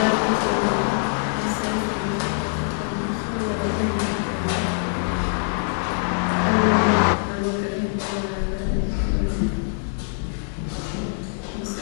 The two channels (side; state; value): right; silent; 63 dB below the other